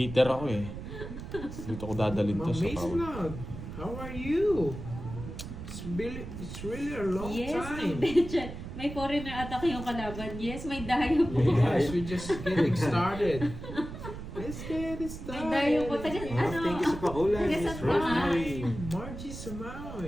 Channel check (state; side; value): noise; right; rumble, 9 dB below the sound